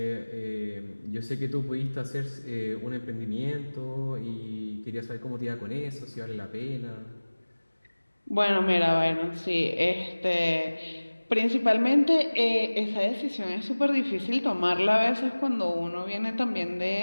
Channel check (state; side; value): inverted; both; correlation -1.00